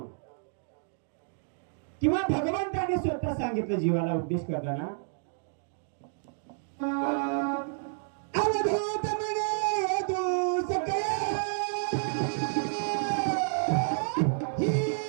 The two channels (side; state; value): left; silent; digital silence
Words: किंवा भगवंताने स्वतः सांगितलं जीवाला उपदेश करताना, अवधूत म्हणे तू सकया ही